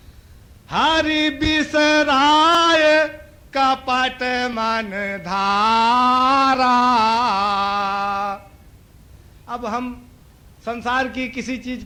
हरि बिसराय कपट मन धारा। अब हम संसार की किसी चीज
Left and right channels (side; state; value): both; identical; correlation 1.00